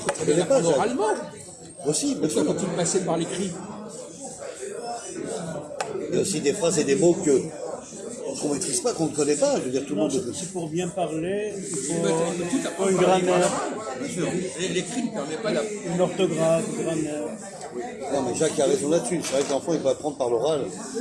peut très bien l'apprendre oralement. Aussi, bien sûr. Pourquoi faut-il passer par l'écrit? Il y a aussi des phrases et des mots qu'on ne maîtrise pas, qu'on ne connaît pas. Je veux dire, tout le monde. C'est pour bien parler, il Tout faut apprendre une par grammaire, Bien sûr. L'écrit ne permet pas d'aprendre. une orthographe, une grammaire. Non, mais Jacques a raison là-dessus. C'est vrai que l'enfant, il peut apprendre par l'oral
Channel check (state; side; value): identical; both; correlation 1.00